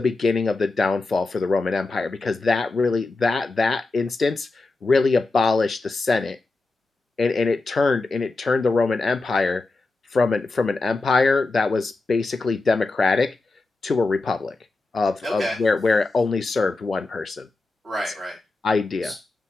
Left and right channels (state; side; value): quieter; right; 3.4 dB